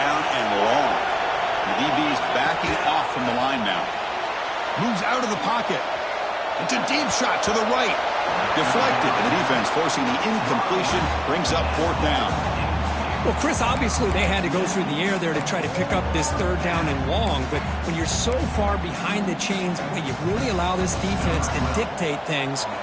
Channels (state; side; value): identical; both; correlation 1.00